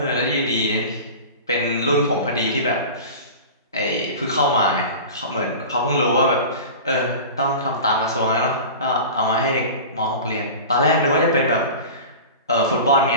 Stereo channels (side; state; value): both; inverted; correlation -0.34